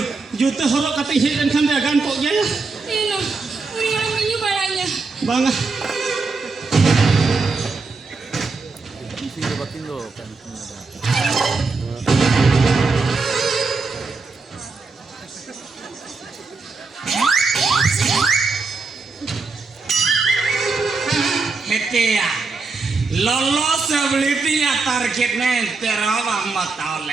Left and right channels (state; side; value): quieter; left; 4.1 dB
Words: juta horok kata isi dan kan dagan kok ya ini orang menyu barangnya bangga hete ya lolos ability-nya targetnya terlalu amat